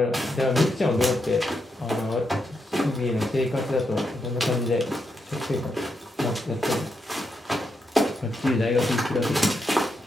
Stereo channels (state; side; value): normal; both; correlation 0.82